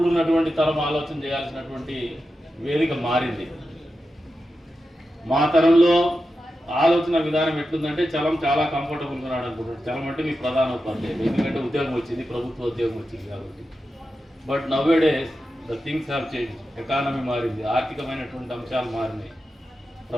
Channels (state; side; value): normal; both; correlation 0.90